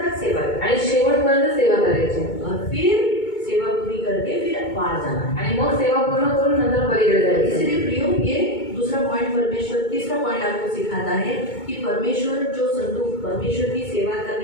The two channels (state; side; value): late; right; 2.2 ms